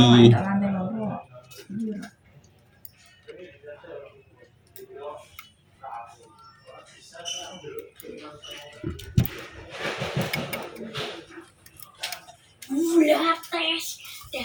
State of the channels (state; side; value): identical; both; correlation 1.00